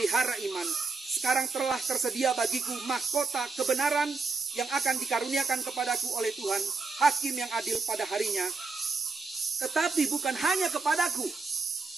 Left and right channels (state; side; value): quieter; left; 4.4 dB